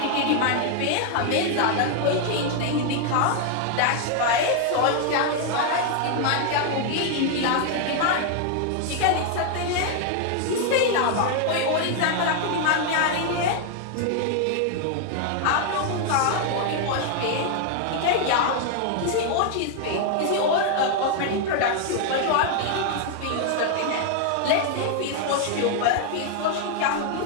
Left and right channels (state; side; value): different; both; correlation 0.00